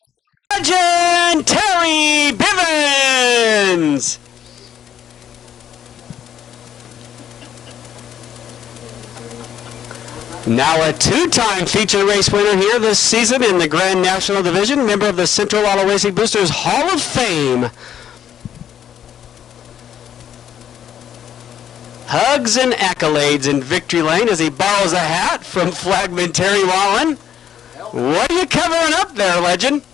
Legend Terry Bivens. Now a 2-time feature race winner here this season in the Grand National Division, member of the Central Auto Racing Boosters Hall of Fame. Hugs and accolades in victory lane as he borrows a hat from Flagman Terry Wallen. What are you covering up there, legend?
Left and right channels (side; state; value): right; quieter; 9.6 dB